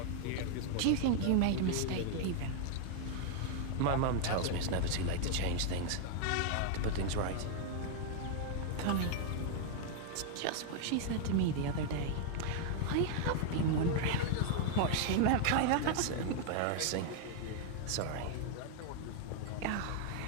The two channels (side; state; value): both; different; correlation 0.00